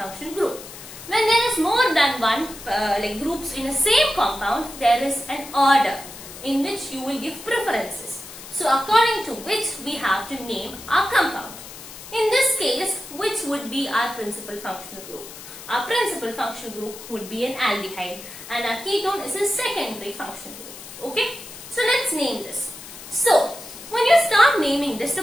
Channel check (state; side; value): noise; left; hiss, 14 dB below the sound